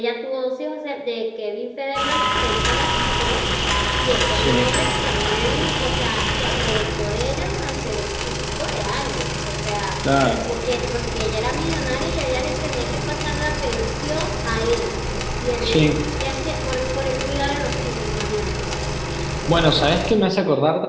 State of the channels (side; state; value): both; identical; correlation 1.00